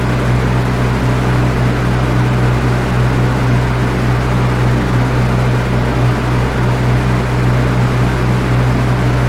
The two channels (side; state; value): both; identical; correlation 1.00